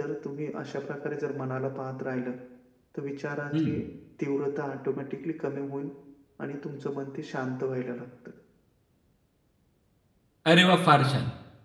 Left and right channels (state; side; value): identical; both; correlation 1.00